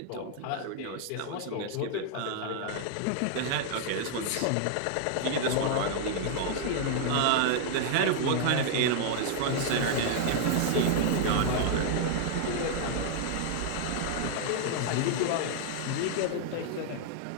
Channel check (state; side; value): different; both; correlation 0.00